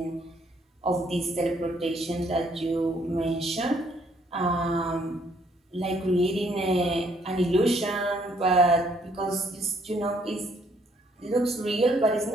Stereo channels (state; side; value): normal; both; correlation 0.67